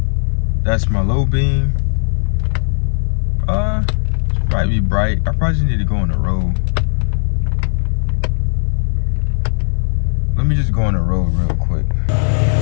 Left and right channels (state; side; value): silent; right; 55 dB below the other